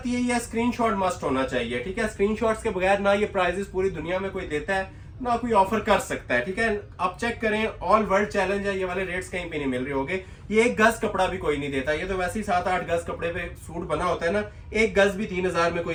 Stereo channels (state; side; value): identical; both; correlation 1.00